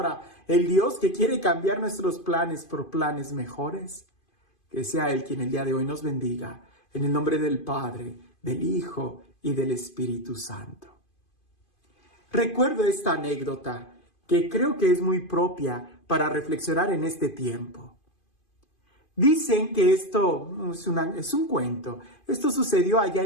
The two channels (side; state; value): right; late; 2.5 ms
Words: el Dios que quiere cambiar nuestros planes por planes mejores, que sea Él quien el día de hoy nos bendiga, en el nombre del Padre, del Hijo y del Espíritu Santo. Recuerdo esta anécdota que creo que es muy propia para reflexionar en este tiempo. Dicen que esto es un cuento. Esto sucedió allá